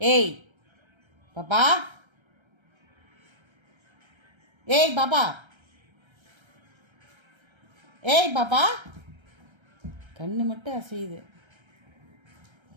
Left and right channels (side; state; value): left; late; 1.3 ms